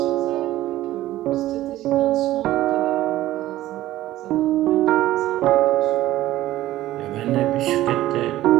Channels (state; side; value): quieter; left; 15.1 dB